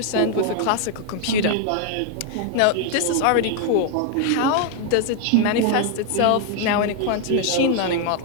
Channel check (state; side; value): different; both; correlation 0.00